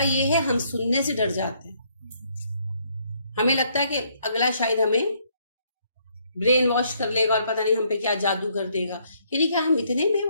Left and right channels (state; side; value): inverted; both; correlation -0.69